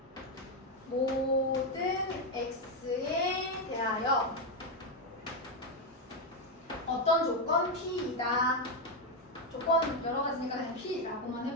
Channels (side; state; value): both; normal; correlation 0.06